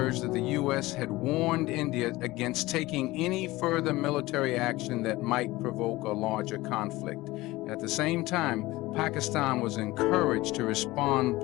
that the U.S. had warned India against taking any further military action that might provoke a larger conflict. At the same time, Pakistan was encouraged to respond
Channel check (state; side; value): quieter; right; 19.3 dB